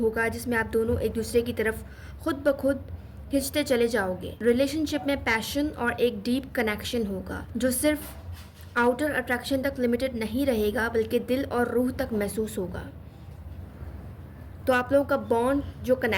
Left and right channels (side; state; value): both; identical; correlation 1.00